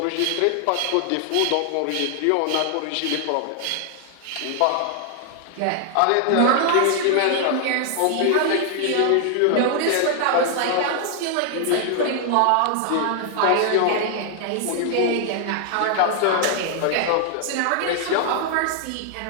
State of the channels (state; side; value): different; both; correlation 0.00